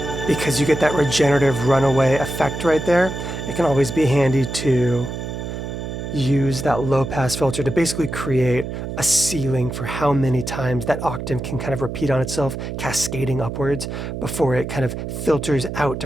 Because you get that regenerative runaway effect right there, it can always be handy to use that low pass filter to basically create a ceiling for how many times that octave can kind of repeat on itself, cascading upwards before it kind of filters out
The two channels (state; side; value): noise; right; hum, 6 dB below the sound